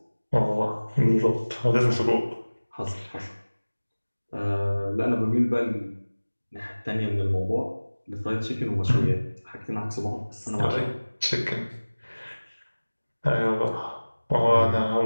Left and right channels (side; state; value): both; inverted; correlation -1.00